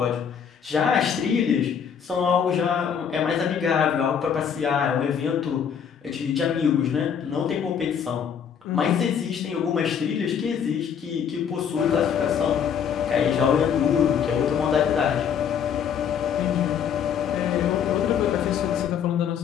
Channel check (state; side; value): quieter; right; 7.7 dB